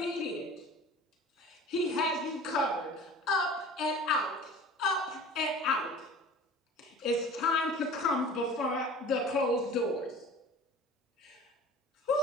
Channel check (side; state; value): both; normal; correlation 0.42